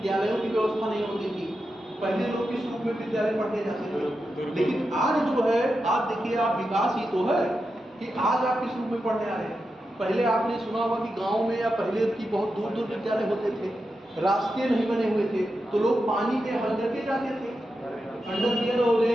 की व्यवस्था नहीं होती थी, पहले लोग किस रूप में विद्यालय पढ़ने जाते थे। लेकिन आज जो है, आज देखिए आप, विकास ही तो है कि आज आप किस रूप में पढ़ने आ रहे हैं। पहले आपने सुना होगा कि गांव में या पहले की बहुत दूर दूर विद्यालय होते थे, रास्ते नहीं बने हुए थे, तो लोग पानी में हल करके जाते थे, अंडरवियर हो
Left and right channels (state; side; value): normal; both; correlation 0.89